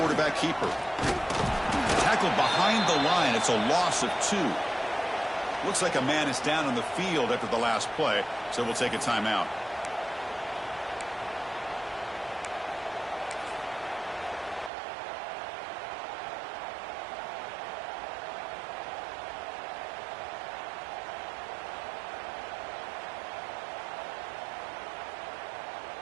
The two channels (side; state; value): left; drops out; at 14.7 s